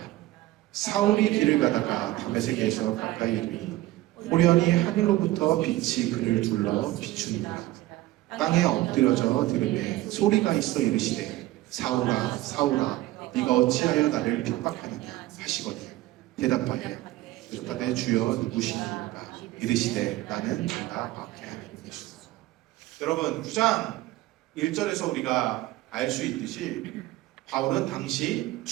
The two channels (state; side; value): quieter; left; 16.8 dB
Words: 사울이 길을 가다가 다메섹에서 가까이 이르니 호련히 하늘로부터 빛이 그를 둘러 비추니라. 땅에 엎드려져 들으매 소리가 있어 이르시되 사울아 사울아 네가 어찌하여 나를 핍박하느냐 하시거늘 대답하여 이르되 주여 누구시니까 이르시되 나는 네가 박해하는 예수다. 여러분 9장 1절에서 우리가 알 수 있듯이 바울은 당시